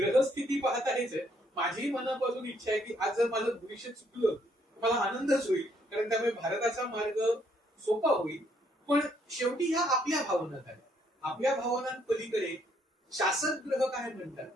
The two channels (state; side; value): normal; both; correlation 0.69